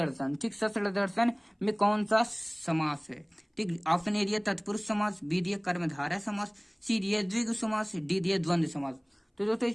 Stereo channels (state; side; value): identical; both; correlation 1.00